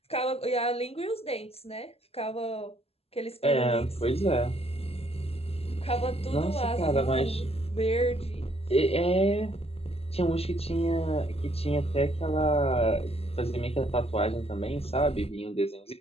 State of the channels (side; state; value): right; late; 0.29 ms